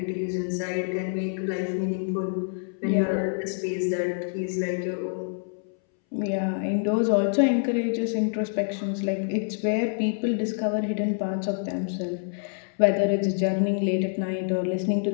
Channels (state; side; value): silent; right; 61 dB below the other